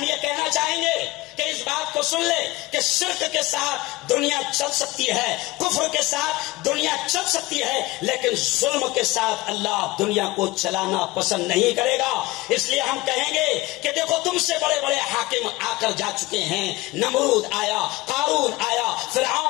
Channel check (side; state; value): right; quieter; 20.7 dB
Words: یہ کہنا چاہیں گے کہ اس بات کو سن لے کہ شرک کے ساتھ دنیا چل سکتی ہے، کفر کے ساتھ دنیا چل سکتی ہے، لیکن ظلم کے ساتھ اللہ دنیا کو چلانا پسند نہیں کرے گا۔ اس لیے ہم کہیں گے کہ دیکھو تم سے بڑے بڑے حاکم آ کر جا چکے ہیں، نمرود آیا، قارون آیا،